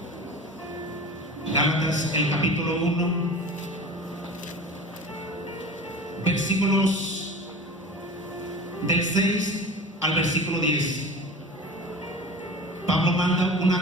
Gálatas, el capítulo 1, versículos del 6 al versículo 10. Pablo manda una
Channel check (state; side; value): normal; both; correlation 0.36